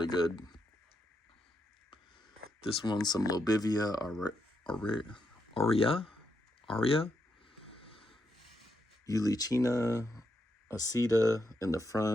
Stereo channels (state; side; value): normal; both; correlation 0.82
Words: good. This one's some Lobivia aurea, Eulichina acida in the